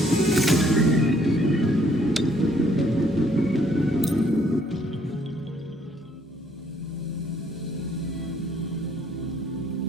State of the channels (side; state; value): both; normal; correlation 0.65